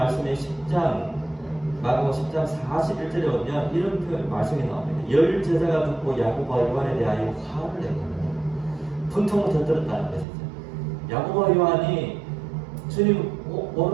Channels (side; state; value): left; drops out; at 10.2 s